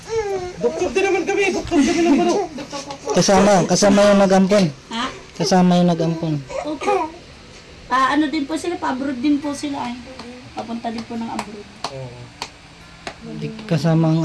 Doktor din naman kami. Doktor kami ng baro. Kasama yung nag-ampon. Ha? Kasama yung nag-ampon. Opo. Ano din po sila, pa-abroad din po sila ay. Papunta din po ng abroad. Kasama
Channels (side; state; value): both; identical; correlation 1.00